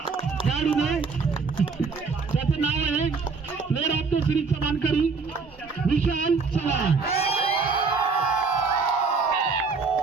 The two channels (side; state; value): left; quieter; 4.7 dB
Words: खेळाडूने, त्याचं नाव आहे प्लेअर ऑफ द सिरीजचा मानकरी विशाल चव्हाण.